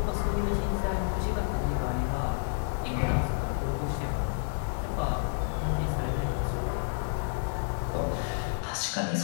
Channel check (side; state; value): right; silent; digital silence